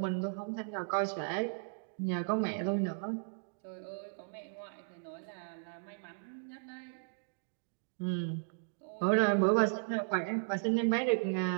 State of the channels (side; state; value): left; silent; digital silence